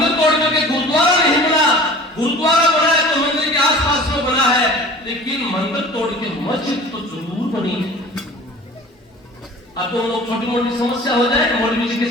तोड़ करके गुरुद्वारा नहीं बना। गुरुद्वारा बना है तो मंदिर के आसपास में बना है, लेकिन मंदिर तोड़ के मस्जिद तो जरूर बनी है। अब तो लोग छोटी मोटी समस्या हो जाए मौलवी जी के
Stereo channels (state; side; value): normal; both; correlation 0.42